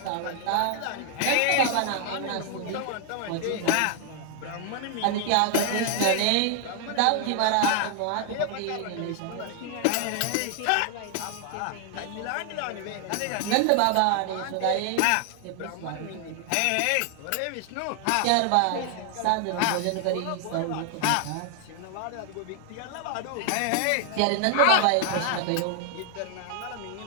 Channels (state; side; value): different; both; correlation 0.00